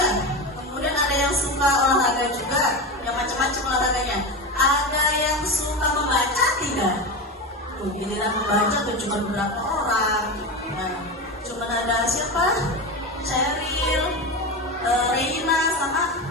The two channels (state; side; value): normal; both; correlation 0.21